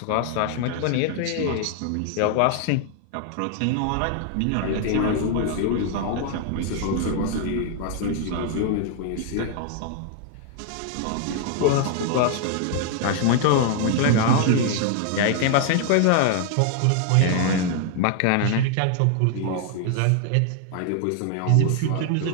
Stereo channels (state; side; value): different; both; correlation 0.00